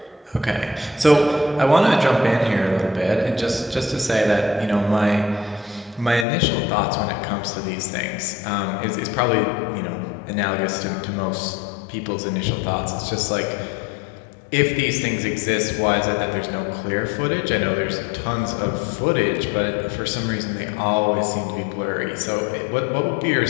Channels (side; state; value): right; drops out; at 6.2 s